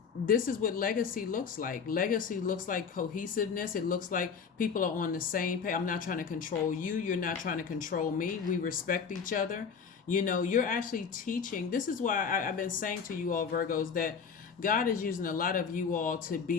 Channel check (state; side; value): quieter; right; 6.2 dB